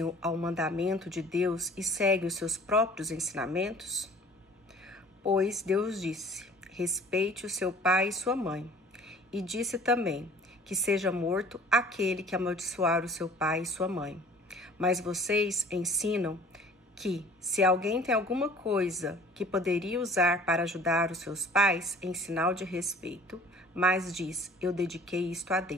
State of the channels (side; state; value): both; normal; correlation 0.49